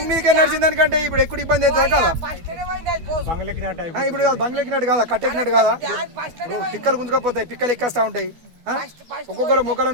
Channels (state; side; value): late; left; 12 ms